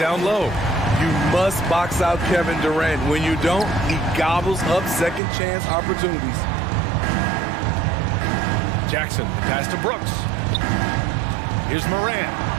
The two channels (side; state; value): left; drops out; at 5.2 s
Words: low. You must box out Kevin Durant. When you don't, he gobbles up second chance opportunities. Jackson, the pass to Brooks. Here's Morant.